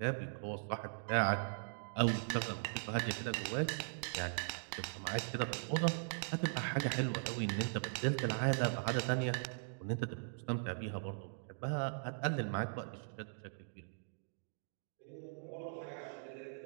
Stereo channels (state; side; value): silent; left; digital silence